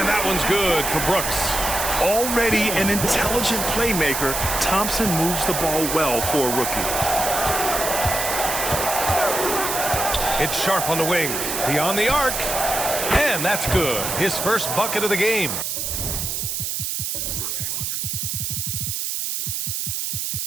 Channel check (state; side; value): noise; right; hiss, 2 dB below the sound